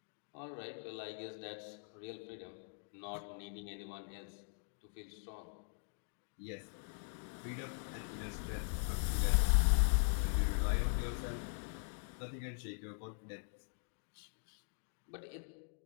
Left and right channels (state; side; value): silent; right; digital silence